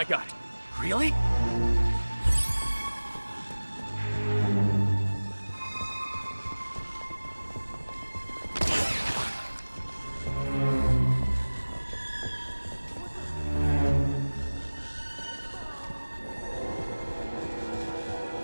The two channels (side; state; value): both; inverted; correlation -1.00